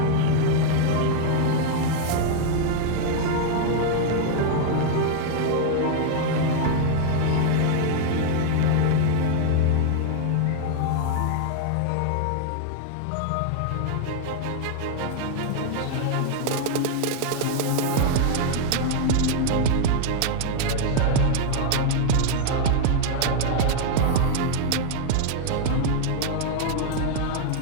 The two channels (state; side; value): different; both; correlation 0.00